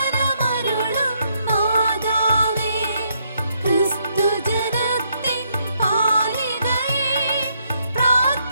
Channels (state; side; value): inverted; both; correlation -0.74